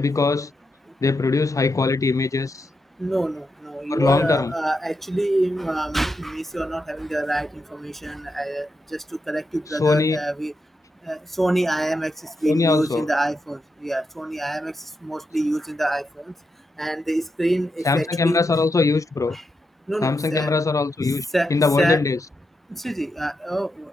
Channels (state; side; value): normal; both; correlation 0.85